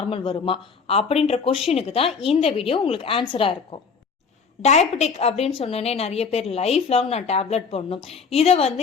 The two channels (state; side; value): quieter; right; 5.5 dB